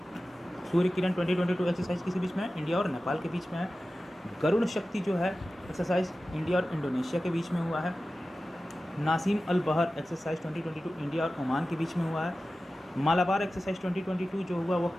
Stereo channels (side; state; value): both; normal; correlation 0.95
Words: सूर्य किरण 2022 एक्सरसाइज किसी बीच में है? इंडिया और नेपाल के बीच में है। गरुड़ शक्ति जो है एक्सरसाइज इंडिया और इंडोनेशिया के बीच में हुआ है। नासिम अल बहर एक्सरसाइज 2022 इंडिया और ओमान के बीच में हुआ है। मालाबार एक्सरसाइज 2022 जो हुआ वो